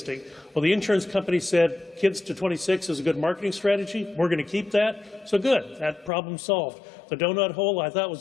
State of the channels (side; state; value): right; drops out; at 6.1 s